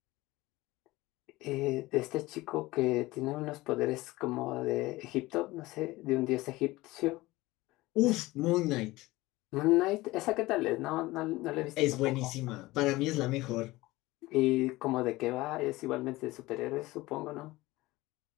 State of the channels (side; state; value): right; quieter; 19.6 dB